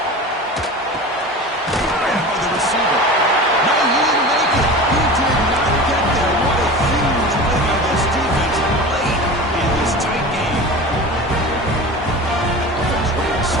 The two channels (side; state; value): both; normal; correlation 0.33